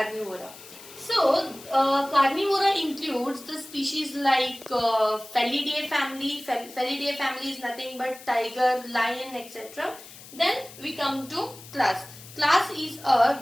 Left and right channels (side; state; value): left; noise; hiss, 18 dB below the sound